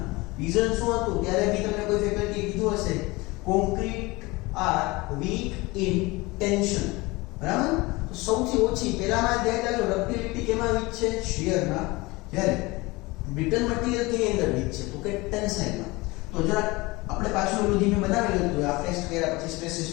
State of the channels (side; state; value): right; quieter; 22.9 dB